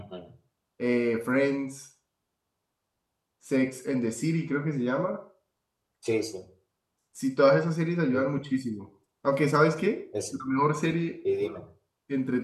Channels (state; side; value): identical; both; correlation 1.00